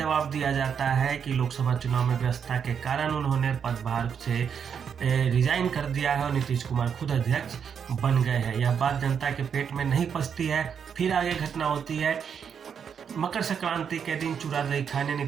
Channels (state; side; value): quieter; left; 7.3 dB